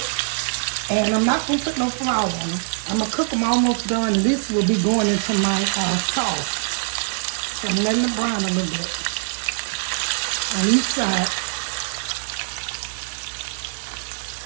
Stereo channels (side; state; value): left; silent; digital silence